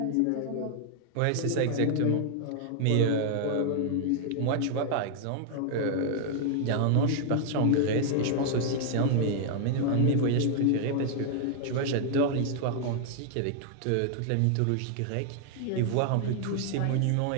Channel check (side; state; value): both; different; correlation 0.00